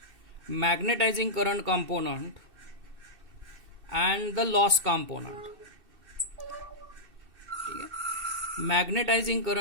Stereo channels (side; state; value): left; late; 2.7 ms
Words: magnetizing current component and the loss component. Magnetizing